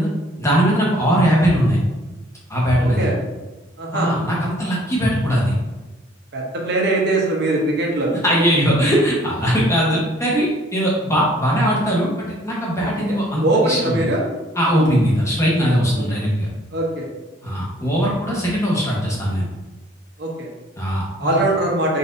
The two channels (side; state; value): both; normal; correlation 0.57